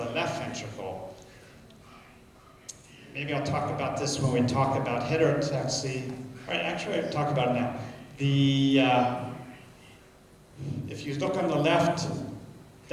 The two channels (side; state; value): both; identical; correlation 1.00